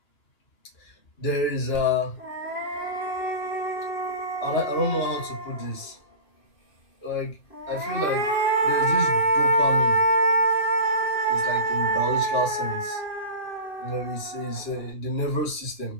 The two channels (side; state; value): right; late; 2.9 ms